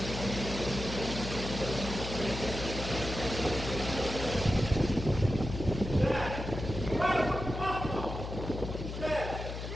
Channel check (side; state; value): left; noise; hum, 7 dB below the sound